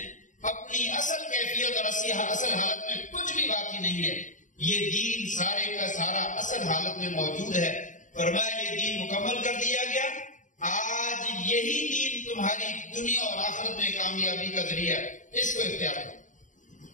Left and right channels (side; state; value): right; late; 0.37 ms